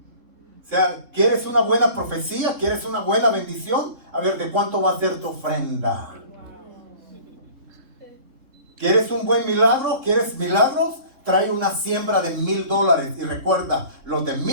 O sea, ¿quieres una buena profecía? ¿Quieres una buena bendición? A ver, ¿de cuánto va a ser tu ofrenda? ¿Quieres un buen milagro? ¿Quieres milagros? Trae una siembra de $1,000. Y recuerda, los de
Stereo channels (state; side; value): late; left; 3.7 ms